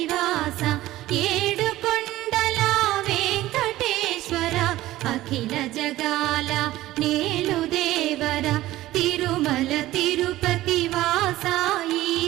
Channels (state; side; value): quieter; left; 16.0 dB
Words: ఏడుకొండల వెంకటేశ్వర అఖిల జగాల నేలు దేవర తిరుమల తిరుపతి వాస